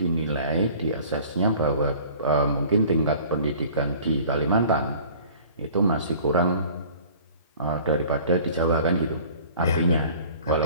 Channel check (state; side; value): inverted; both; correlation -0.48